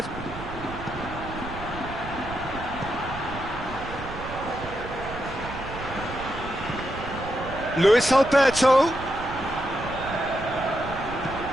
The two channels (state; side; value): noise; right; rumble, 11 dB below the sound